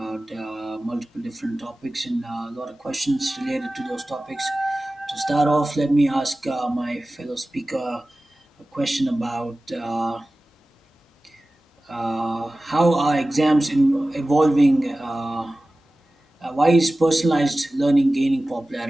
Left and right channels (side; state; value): both; normal; correlation 0.96